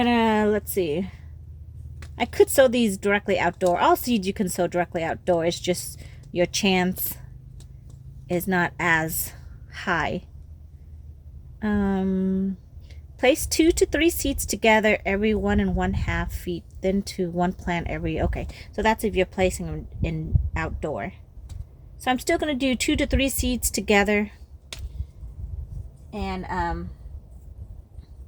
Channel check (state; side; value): identical; both; correlation 1.00